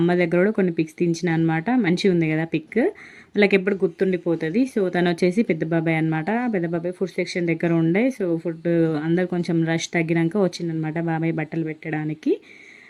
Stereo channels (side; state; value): both; identical; correlation 1.00